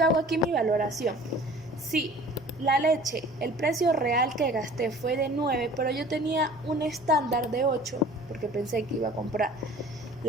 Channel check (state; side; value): normal; both; correlation 0.46